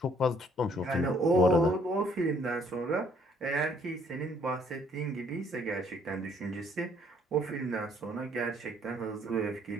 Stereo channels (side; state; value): both; normal; correlation 0.63